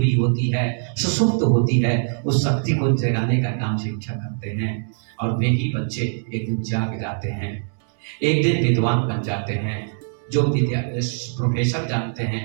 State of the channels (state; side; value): silent; left; digital silence